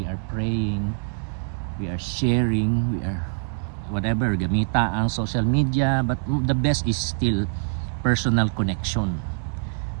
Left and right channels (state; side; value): silent; left; 60 dB below the other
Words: are praying, we are sharing, we are whatever, gamita ang social media, but the best is still personal connection